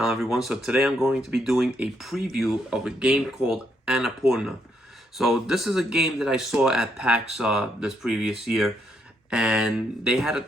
everyone. So today I'm going to be doing a preview of a game called Annapurna. So this is a game that I saw at PAX this previous year, and they had a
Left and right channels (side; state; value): both; normal; correlation 0.75